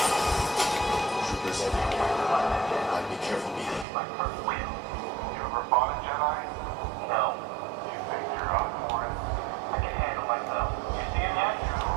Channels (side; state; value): left; drops out; at 3.9 s